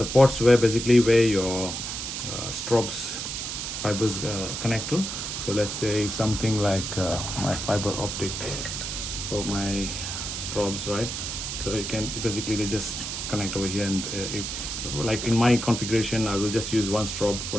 ports where your strobes fibers connect to. So let's say something like my fiber optic for my strobes, right? So you can basically, they just connect over here, and if like in my configuration, I will just use one strobe for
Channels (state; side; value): noise; right; hiss, 5 dB below the sound